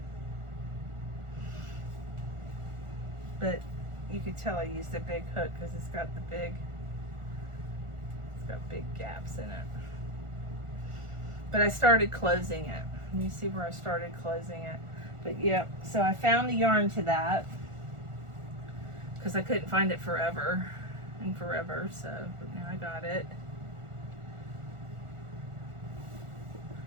you could tell I used a big hook because it's got big gaps in it. But I started closing it. You see where I started closing it. But yeah, so I found the yarn to that because I couldn't find it forever, so now I got it.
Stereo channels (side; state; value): left; late; 1.4 ms